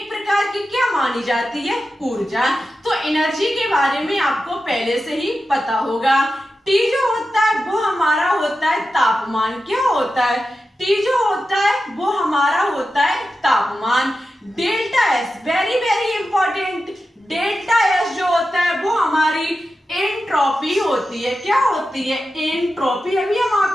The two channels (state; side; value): normal; both; correlation 0.91